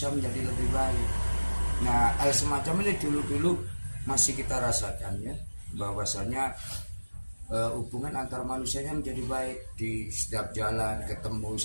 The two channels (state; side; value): inverted; both; correlation -1.00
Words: menjadi lebih baik. Nah, hal semacam ini dulu-dulu masih kita rasakan ya, bahwasanya hubungan antar manusianya menjadi baik. Di setiap jalan ketemu